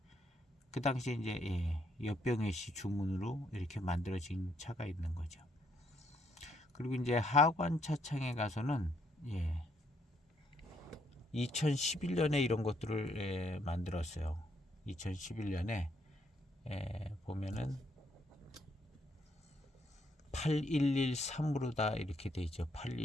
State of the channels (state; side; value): normal; both; correlation 0.73